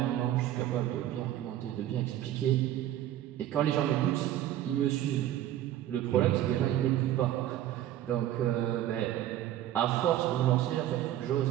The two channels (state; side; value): quieter; left; 12.7 dB